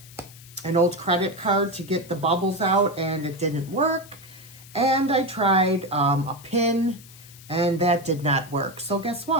old credit card to get the bubbles out and it didn't work. And I tried a pin and that did not work. So guess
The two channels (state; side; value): noise; left; hiss, 20 dB below the sound